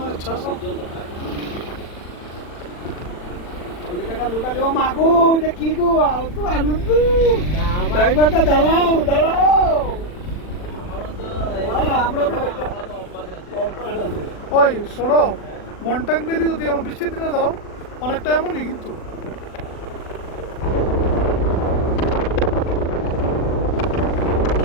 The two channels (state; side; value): late; right; 40 ms